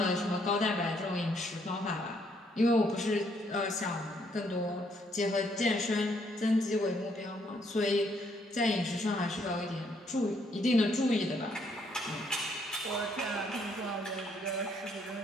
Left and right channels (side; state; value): both; normal; correlation 0.70